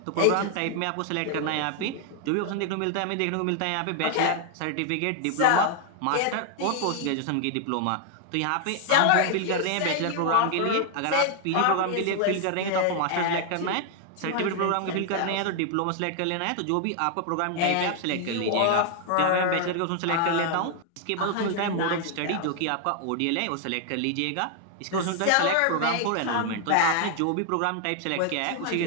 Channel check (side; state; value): both; different; correlation 0.00